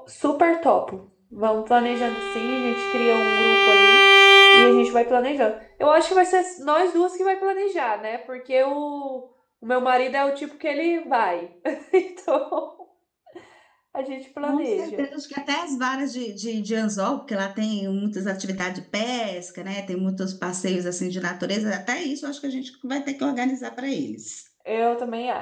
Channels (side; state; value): both; identical; correlation 1.00